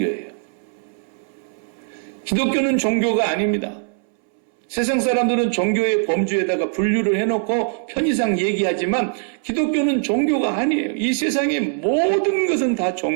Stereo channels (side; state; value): left; silent; 65 dB below the other